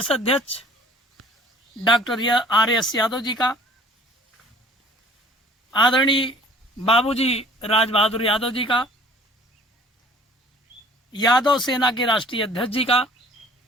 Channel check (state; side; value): normal; both; correlation 0.50